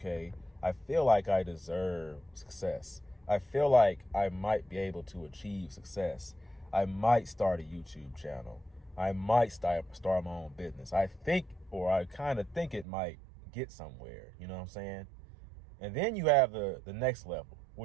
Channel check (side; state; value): left; drops out; at 12.9 s